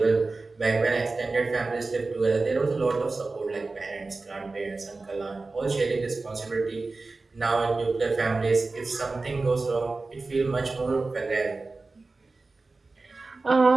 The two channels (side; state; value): left; quieter; 3.6 dB